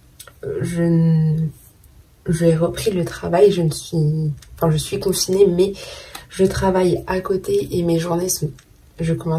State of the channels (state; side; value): identical; both; correlation 1.00